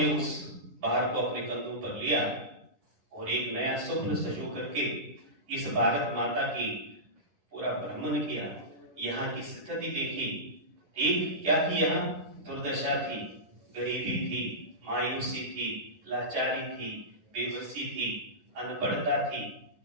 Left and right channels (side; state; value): left; late; 11 ms